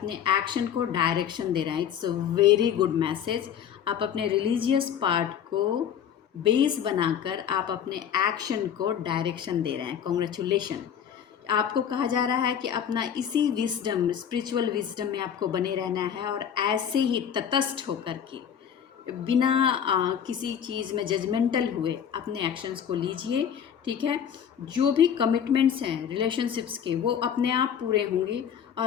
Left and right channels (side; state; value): right; quieter; 8.7 dB